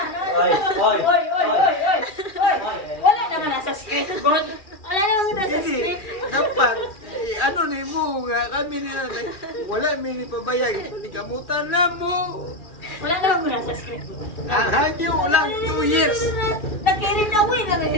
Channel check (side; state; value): right; late; 2.4 ms